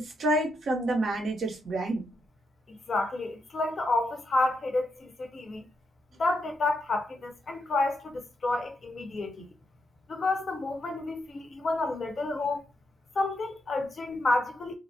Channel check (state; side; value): normal; both; correlation 0.82